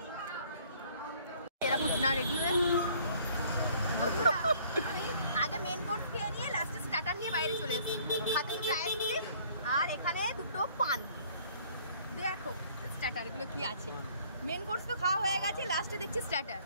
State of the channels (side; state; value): both; inverted; correlation -0.57